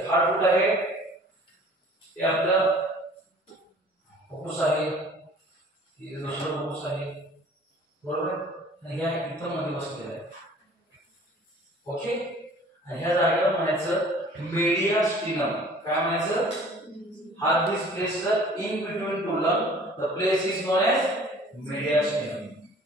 हार्ट कुठं आहे? हे आपलं फुफ्फुस आहे, हे दुसरं फुफ्फुस आहे, बरोबर. आणि ह्या इथं मध्ये बसलेलं आहे. ओके. आणि ह्या जागेला म्हणायचं मेडियास्टिनम. काय म्हणायचं? Heart is placed in between two lung. The place is known as mediastinum.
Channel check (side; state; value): both; normal; correlation 0.50